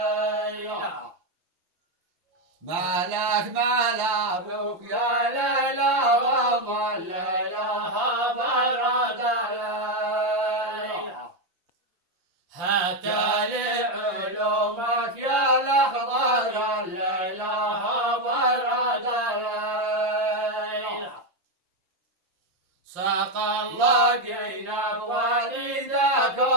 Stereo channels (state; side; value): late; left; 5.7 ms